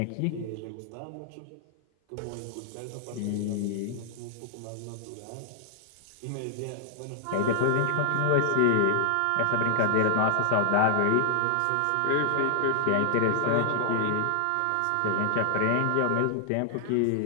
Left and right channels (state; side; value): different; both; correlation 0.00